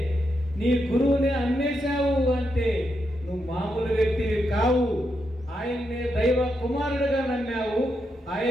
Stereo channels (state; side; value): normal; both; correlation 0.83